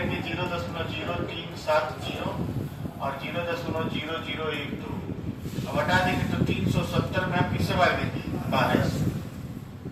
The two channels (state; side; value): identical; both; correlation 1.00